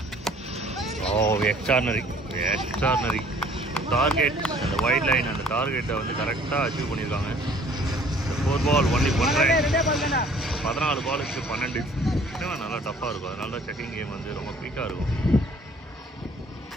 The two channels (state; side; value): normal; both; correlation 0.55